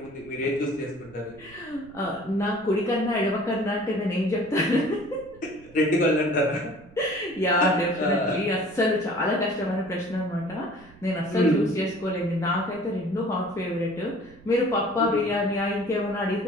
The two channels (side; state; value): right; noise; rumble, 23 dB below the sound